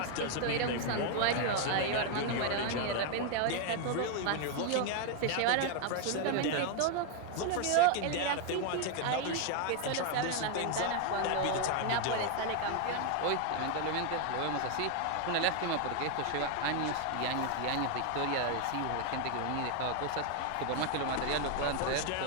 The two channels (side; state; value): both; different; correlation 0.01